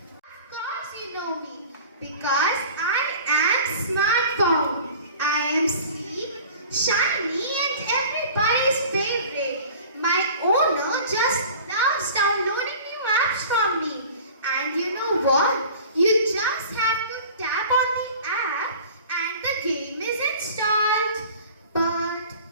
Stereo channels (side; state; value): both; inverted; correlation -0.43